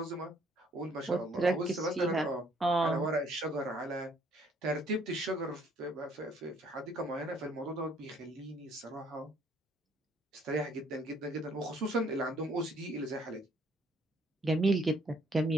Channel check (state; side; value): normal; both; correlation 0.63